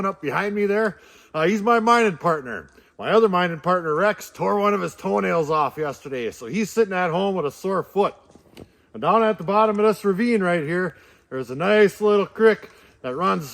up behind me there. He's my mining partner. My other mining partner, Rex, tore one of his toenails off yesterday. So he's sitting at home with a sore foot. And down at the bottom of this ravine right here, there's a nice little creek that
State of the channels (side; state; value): both; identical; correlation 1.00